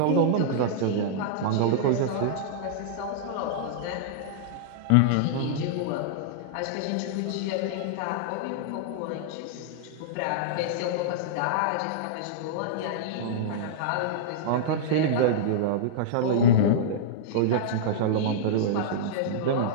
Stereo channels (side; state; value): both; different; correlation -0.02